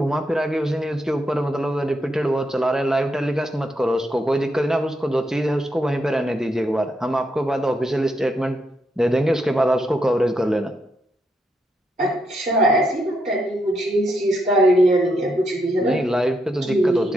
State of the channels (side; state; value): both; normal; correlation 0.79